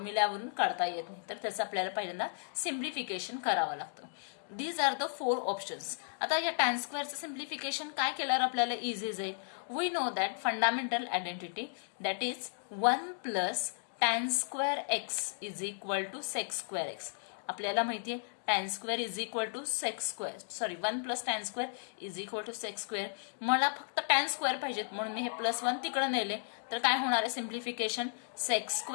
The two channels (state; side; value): silent; right; digital silence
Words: काढता येत नाही, तर त्याचं आपल्याला पहिल्यांदा सिम्प्लिफिकेशन करावं लागतं. These are the 4 options. आता या tan स्क्वेअरचं सिम्प्लिफिकेशन काय केल्यावर आपल्याला इझी जाईल? We know that fundamental identity that is 1 plus tan square x is equal to sec square x. आपल्याला माहिती आहे tan square is equal to sec square, sorry 1 plus tan square is equal to sec square. मला फक्त tan square पाहिजेत म्हणून मी हे +1 तिकडे नेले, तर काय होणार आहे simplification? Sec